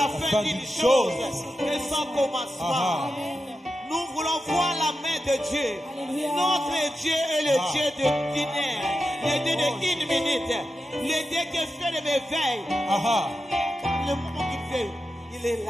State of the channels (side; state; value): both; normal; correlation 0.90